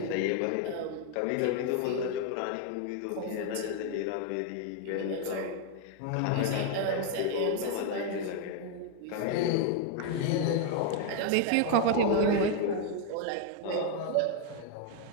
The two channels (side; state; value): both; different; correlation 0.01